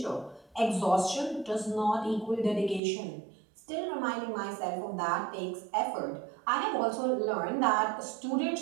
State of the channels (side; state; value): left; drops out; at 2.8 s